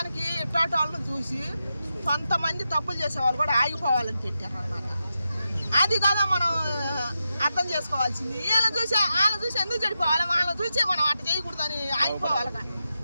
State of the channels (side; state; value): both; inverted; correlation -0.88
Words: ఇట్లాంటి వాళ్ళని చూసి కొంతమంది తప్పులు చేసే వాళ్ళు కూడా ఆగిపోవాలని పెట్టారు అన్నమాట. అది కదా మనం అర్థం చేసుకోవాల్సింది. వీళ్ళని చూసి ఎందుకు చెడిపోవాలి, వాళ్ళని చూసి మనం అట్ట చేయకూడదని ఆగిపోవాలి కానీ